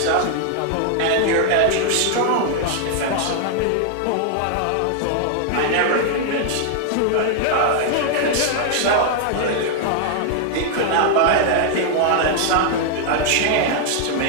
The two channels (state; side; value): different; both; correlation 0.00